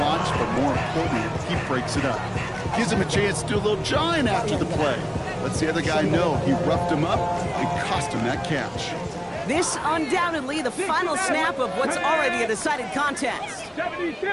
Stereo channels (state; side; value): identical; both; correlation 1.00